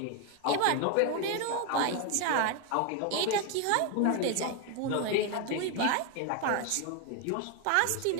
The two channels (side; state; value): both; different; correlation 0.01